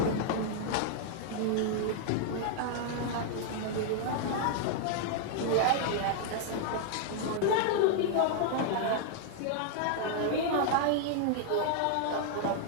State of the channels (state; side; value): different; both; correlation -0.01